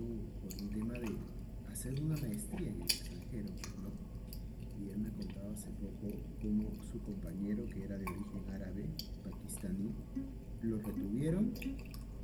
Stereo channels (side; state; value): both; identical; correlation 1.00